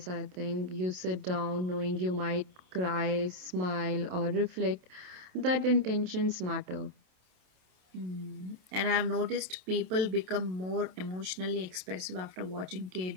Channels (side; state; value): left; late; 27 ms